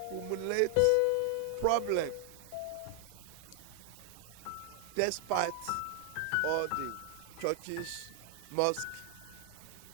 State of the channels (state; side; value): different; both; correlation 0.00